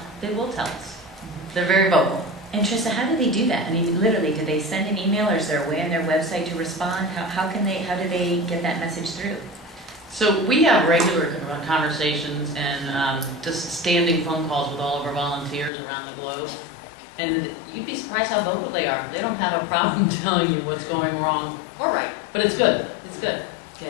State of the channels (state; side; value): drops out; right; at 15.7 s